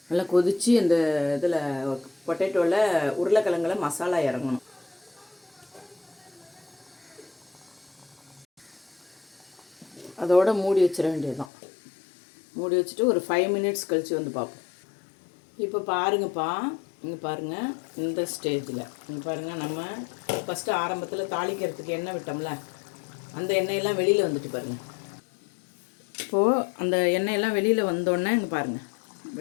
நல்லா கொதித்து அந்த இதில் பொட்டேட்டோவில் உருளைக்கிழங்குல மசாலா இறங்கணும். அதோடு மூடி வச்சிட வேண்டியதுதான். மூடி வச்சுட்டு ஒரு 5 மினிட்ஸ் கழித்து வந்து பார்ப்போம். இப்போ பாருங்கப்பா, இங்கே பாருங்கள், இந்த ஸ்டேஜில் இங்கே பாருங்கள், நம்ம ஃபஸ்ட்டு ஆரம்பத்தில் தாளிக்கிறதுக்கு எண்ணெய் விட்டோம்ல, அந்த எண்ணெயெல்லாம் வெளியில் வந்துட்டு பாருங்கள். இப்போது அந்த எண்ணெயெல்லாம் வெளியில் வந்தோடனே இங்கே பாருங்கள்,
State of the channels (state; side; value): drops out; right; at 11.5 s